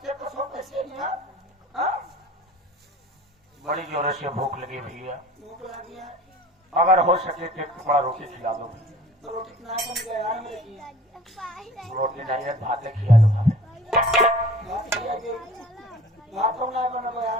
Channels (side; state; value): both; normal; correlation 0.45